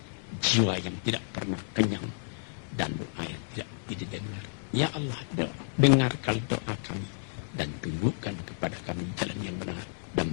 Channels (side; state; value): right; silent; digital silence